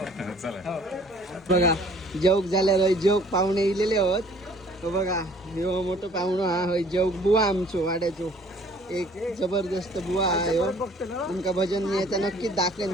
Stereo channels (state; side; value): normal; both; correlation 0.55